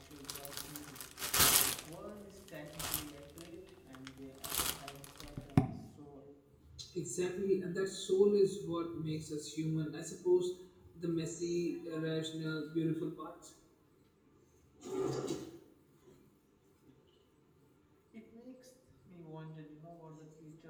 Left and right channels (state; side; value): identical; both; correlation 1.00